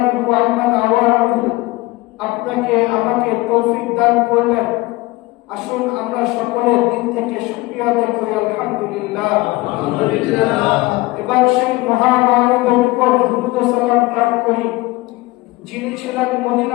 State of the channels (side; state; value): right; quieter; 20.7 dB